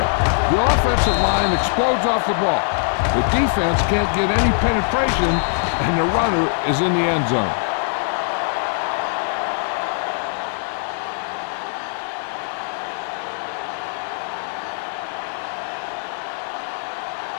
The offensive line explodes off the ball. The defense can't get any penetration, and the runner is in the end zone.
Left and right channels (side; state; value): right; silent; 60 dB below the other